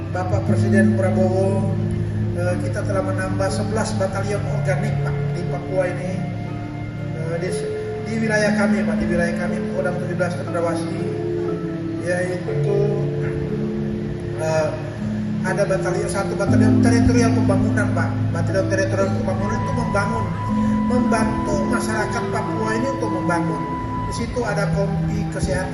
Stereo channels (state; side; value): identical; both; correlation 1.00